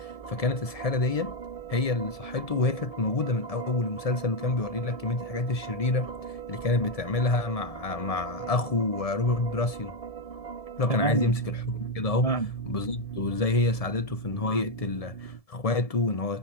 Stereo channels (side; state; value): right; late; 1.7 ms